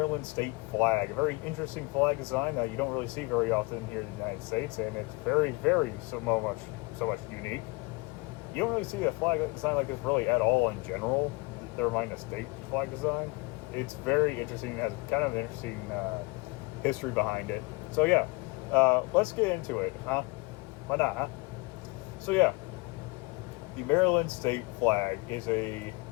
state flag, a very interesting flag design that you don't really see very often here in the United States, and it's very, so much unique. You don't really see a flag design like this really at all in general, never mind a state flag design. It's very interesting, it has kind of an interesting history behind it. So yeah, let's get into it, huh? Why not, huh? So yeah, the Maryland state flag is a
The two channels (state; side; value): quieter; right; 25.8 dB